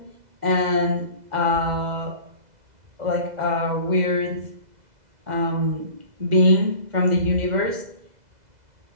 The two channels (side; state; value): left; late; 2.0 ms